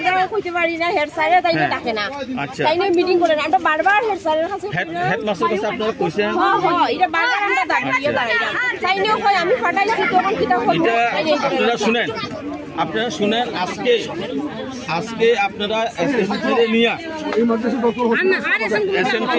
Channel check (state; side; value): identical; both; correlation 1.00